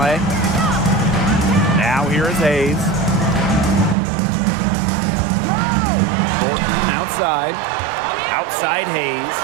Now here is Hayes. Thornton outside. Outside Hayes.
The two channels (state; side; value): drops out; left; at 4.0 s